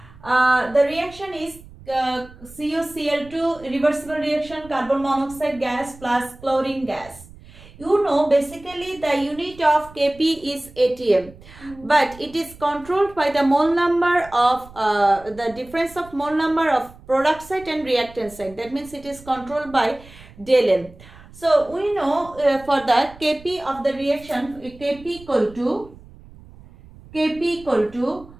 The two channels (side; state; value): right; noise; rumble, 21 dB below the sound